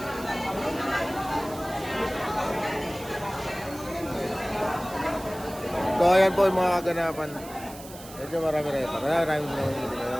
So ayan po yung mga kaganapan. Medyo marami rin pa. Marami na dito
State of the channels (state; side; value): noise; right; hiss, 17 dB below the sound